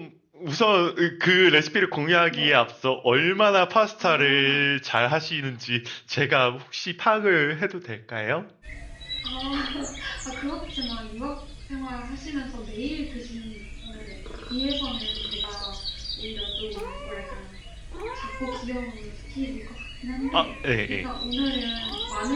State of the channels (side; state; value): both; identical; correlation 1.00